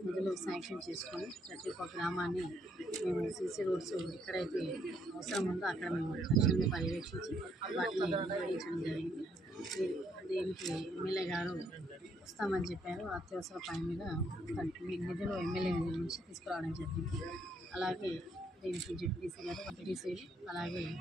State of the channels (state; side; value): normal; both; correlation 0.71